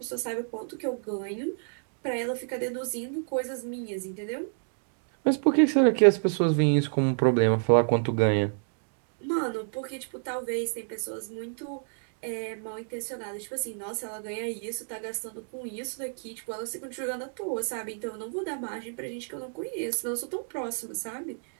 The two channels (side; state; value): left; silent; digital silence